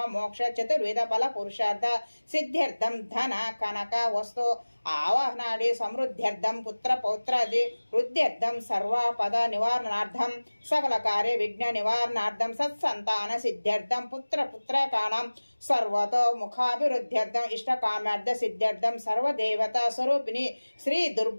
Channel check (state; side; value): inverted; both; correlation -1.00